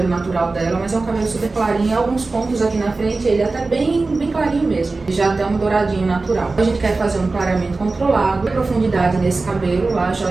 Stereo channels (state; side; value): quieter; left; 3.6 dB